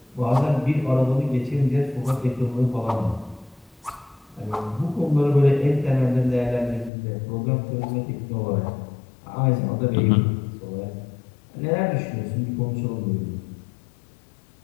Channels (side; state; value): right; drops out; at 6.9 s